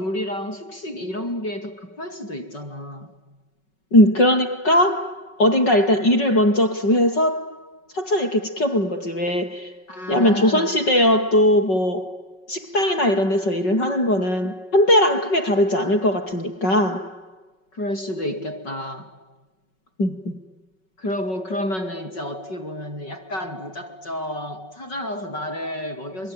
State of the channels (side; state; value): right; late; 5.3 ms